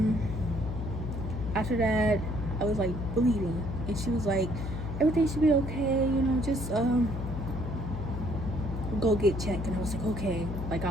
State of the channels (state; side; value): noise; left; hum, 5 dB below the sound